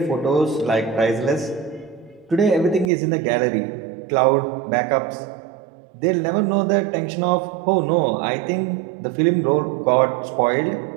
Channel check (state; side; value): drops out; left; at 2.9 s